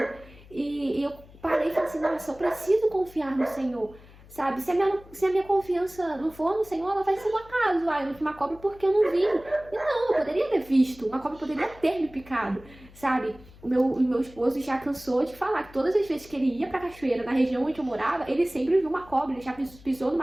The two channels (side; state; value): left; noise; hum, 22 dB below the sound